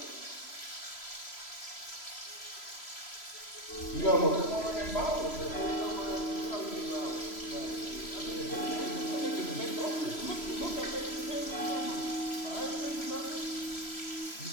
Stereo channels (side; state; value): right; late; 3.0 ms